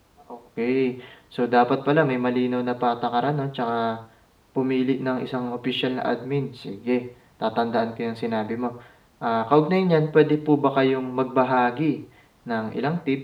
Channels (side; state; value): both; identical; correlation 1.00